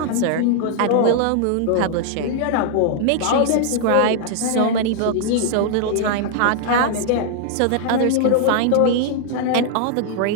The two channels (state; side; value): different; both; correlation 0.00